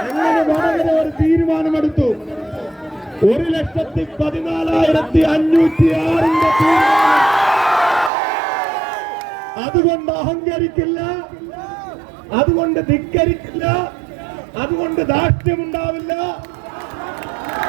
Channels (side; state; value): left; drops out; at 8.1 s